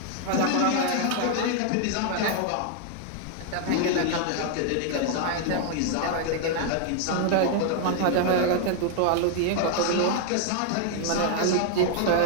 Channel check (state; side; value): different; both; correlation 0.00